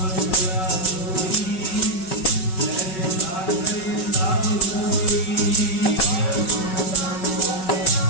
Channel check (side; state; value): right; late; 5.3 ms